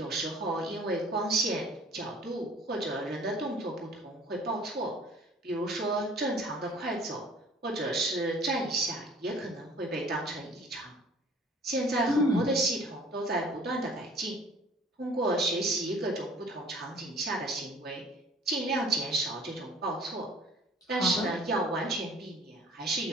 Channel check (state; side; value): normal; both; correlation 0.52